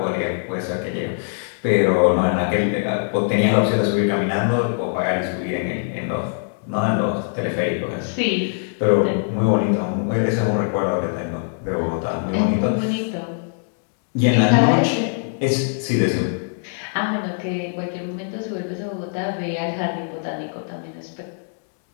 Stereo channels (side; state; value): right; silent; 64 dB below the other